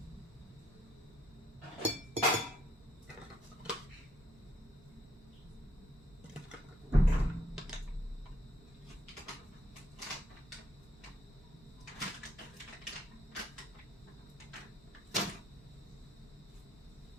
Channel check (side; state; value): both; normal; correlation 0.71